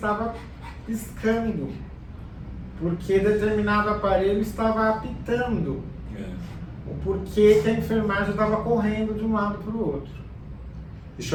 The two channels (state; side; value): identical; both; correlation 1.00